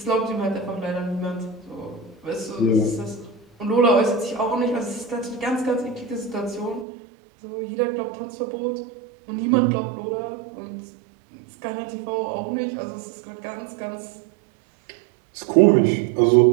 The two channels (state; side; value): drops out; left; at 6.9 s